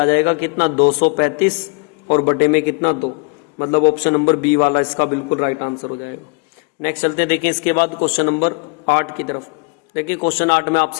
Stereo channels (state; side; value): quieter; right; 32.3 dB